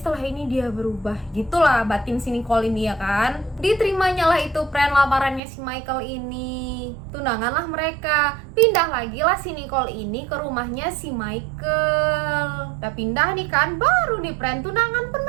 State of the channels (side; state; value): left; drops out; at 5.4 s